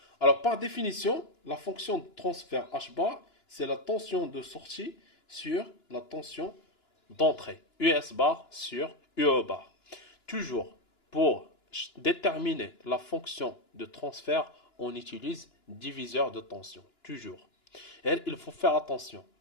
Alors, par définition, la fonction de transfert H bar, c'est la tension de sortie sur la tension d'entrée. US bar sur UE bar. Toujours, pour déterminer la fonction de transfert, on utilise diviseur de tension. Toujours. Et il faut faire attention.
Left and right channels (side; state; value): right; late; 2.9 ms